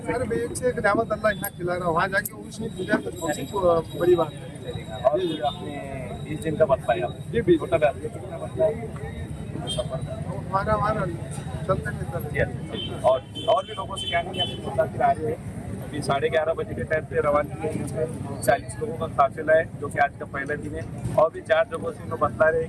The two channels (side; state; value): both; identical; correlation 1.00